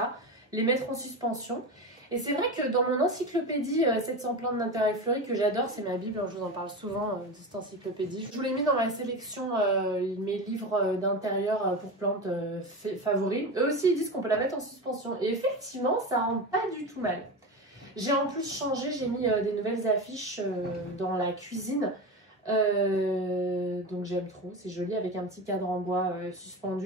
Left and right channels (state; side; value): normal; both; correlation 0.23